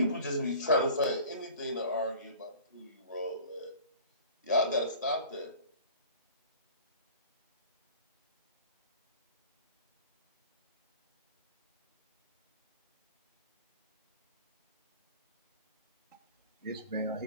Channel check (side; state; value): both; inverted; correlation -0.44